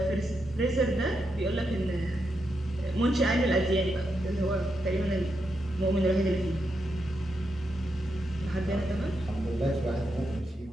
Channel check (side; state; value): both; normal; correlation 0.84